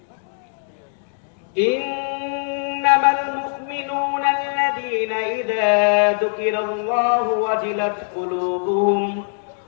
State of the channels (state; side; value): silent; right; digital silence